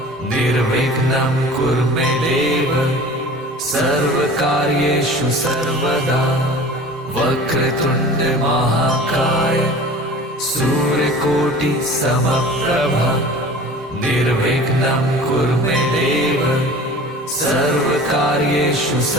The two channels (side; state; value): both; normal; correlation 0.41